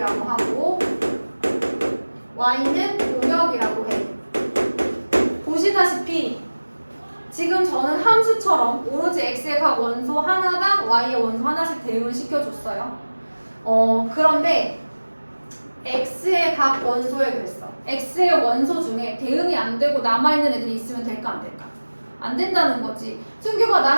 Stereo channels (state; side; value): inverted; both; correlation -1.00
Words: 하고 y는 공역이라고 해. 보시다시피 지금 저는 함수처럼 오로지 x의 각 원소 하나당 y의 원소 하나씩 대응을 시켜줬어요. 그런데 x의 각 원소에 그랬어. x의 원소 중에 대응이 안 되고 남아있는 애들이 있으면 될까 안 될까? 안 된다는 거지. 승규가